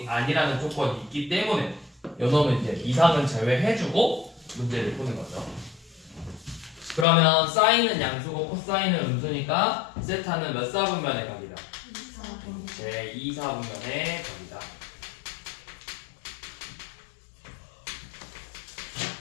아니라는 조건이 있기 때문에 요놈은 이제 이상은 제외해주고 문제를 푸는 거죠. 그러면 사인은 양수고 코사인은 음수니까 세타는 몇 사분면의 각이다? 제 2사분면의 각이다.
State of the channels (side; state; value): right; drops out; at 7.1 s